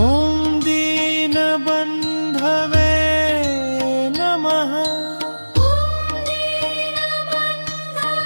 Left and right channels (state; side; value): inverted; both; correlation -1.00